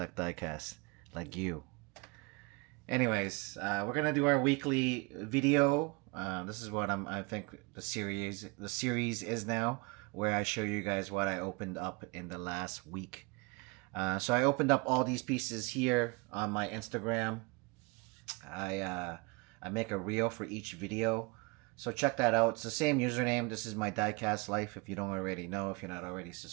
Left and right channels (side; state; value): left; quieter; 28.0 dB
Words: diecast like you. Anyways, we're gonna do our weekly video. This is what I think the series is now, where I show you guys what I opened up in the last week. So I opened up all these pieces here on my Instagram. I make a reel for each video, so check that out. It's the same username. This is my Diecast Life. If you don't already know, if you're not already